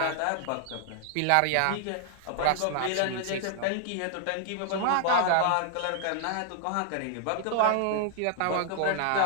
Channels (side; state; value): both; different; correlation 0.00